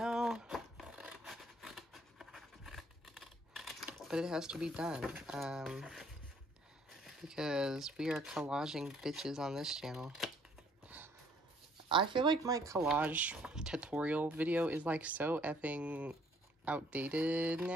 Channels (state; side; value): normal; both; correlation 0.62